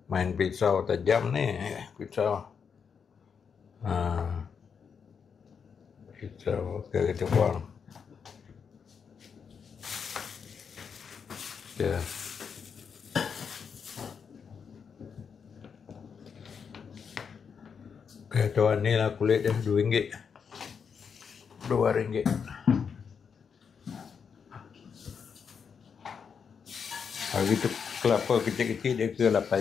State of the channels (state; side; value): quieter; right; 6.5 dB